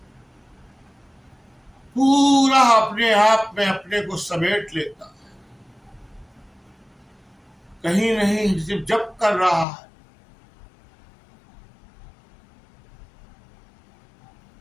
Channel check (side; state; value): right; drops out; at 9.7 s